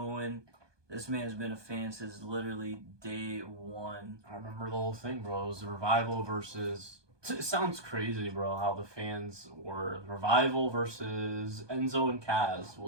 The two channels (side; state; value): left; late; 1.2 ms